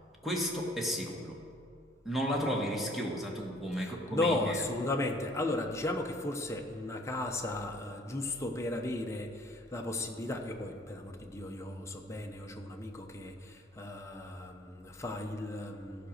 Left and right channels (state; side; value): normal; both; correlation 0.57